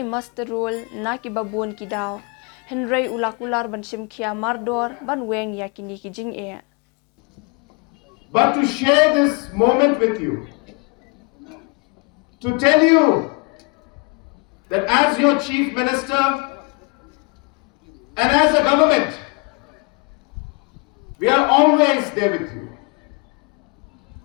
master role na ki babun ki daw henry Kular ban shimkhia mardor ban weng ya kini ki jing But to share this moment with you, to tell you that as your Chief Minister and as a government, we are always there with you.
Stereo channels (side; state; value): right; quieter; 32.0 dB